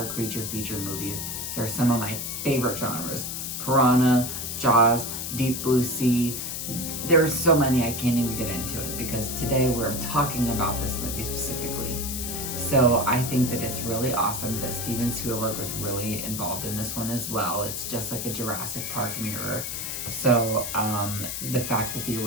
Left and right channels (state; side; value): noise; left; hiss, 4 dB below the sound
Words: creature feature movies. They're some of my favorite genres. Piranha, Jaws, Deep Blue Sea. There's so many I can't even get into it because today we're talking about this movie specifically. So I think that it's really awesome that Steven Spielberg was really involved in this one as well. It's just like a Jurassic Park mirror. So the fact that the